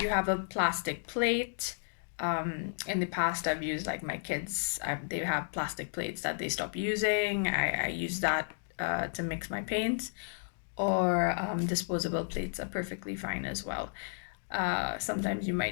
you have a plastic plate, in the past I've used like my kids, they have plastic plates that they stop using. I use that to mix my paints, or disposable plates are perfectly fine as well. Sometimes you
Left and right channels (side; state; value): right; silent; digital silence